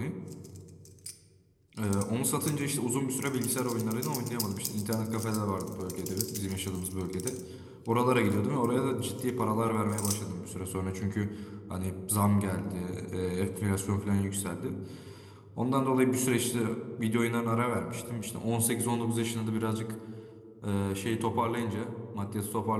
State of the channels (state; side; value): identical; both; correlation 1.00